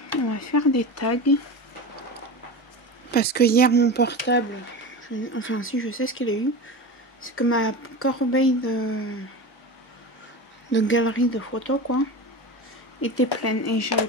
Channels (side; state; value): both; normal; correlation 0.28